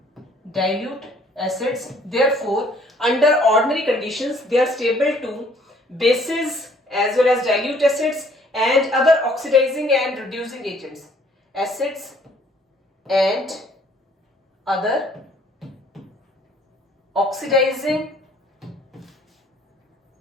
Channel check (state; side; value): normal; both; correlation 0.60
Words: therefore under ordinary conditions they are stable to bases as well as dilute acids and other oxidizing and reducing agents, acids and other oxidizing